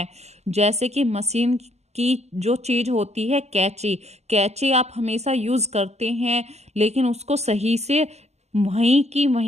जैसे कि मशीन की जो चीज़ होती है कैंची, कैंची आप हमेशा यूज़ करते हैं लेकिन उसको सही से वहीं की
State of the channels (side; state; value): left; late; 0.32 ms